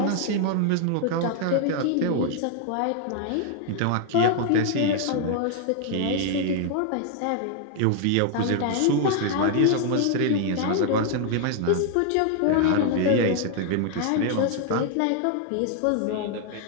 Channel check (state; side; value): different; both; correlation 0.00